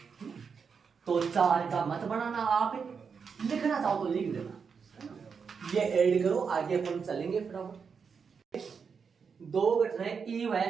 तो 4 का मत बनाना, आप लिखना चाहो तो लिख देना, ये ऐड करो, आगे अपन चलेंगे फटाफट। 2 घटनाएं ई व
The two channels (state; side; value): quieter; left; 6.0 dB